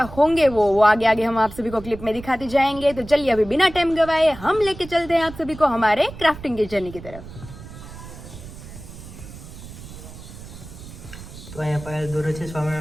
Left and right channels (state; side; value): noise; right; rumble, 14 dB below the sound